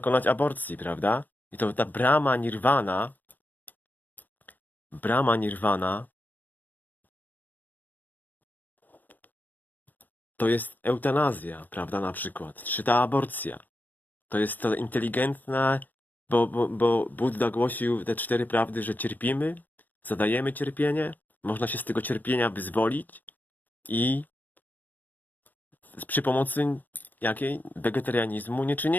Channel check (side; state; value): right; late; 0.084 ms